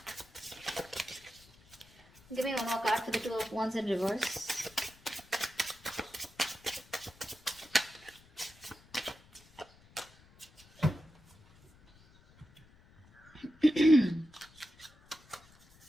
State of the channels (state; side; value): noise; left; rumble, 26 dB below the sound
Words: Give me one more card for the Two of Wands in reverse.